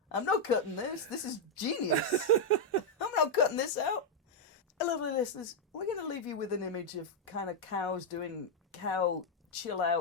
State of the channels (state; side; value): normal; both; correlation -0.01